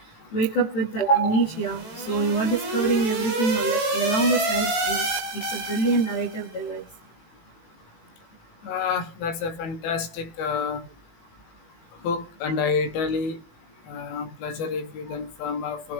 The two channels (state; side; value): late; right; 18 ms